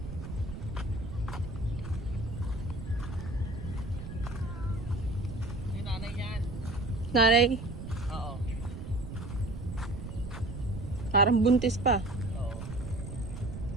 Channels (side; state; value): right; noise; rumble, 8 dB below the sound